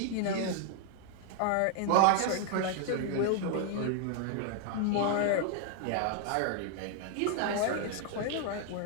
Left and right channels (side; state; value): both; different; correlation 0.00